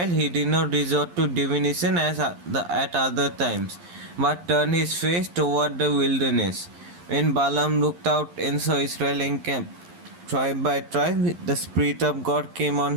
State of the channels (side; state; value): left; late; 11 ms